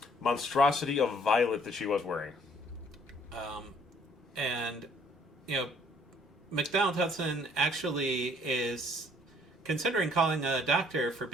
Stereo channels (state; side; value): normal; both; correlation 0.60